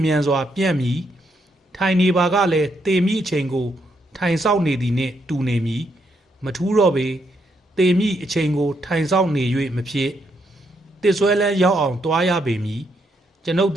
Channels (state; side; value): normal; both; correlation 0.77